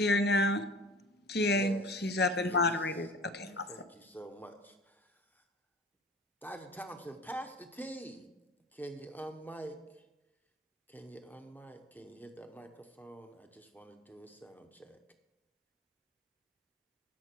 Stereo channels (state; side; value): normal; both; correlation 0.42